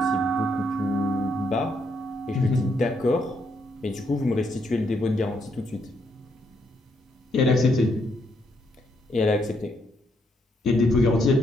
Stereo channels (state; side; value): normal; both; correlation 0.75